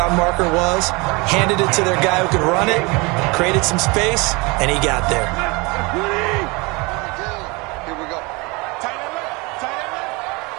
marker was, handed it to their guy who could run it, created some space, and he got there.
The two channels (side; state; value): left; quieter; 26.4 dB